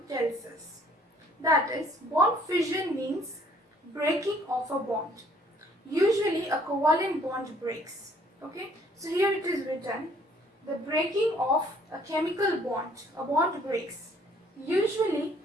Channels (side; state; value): both; normal; correlation 0.60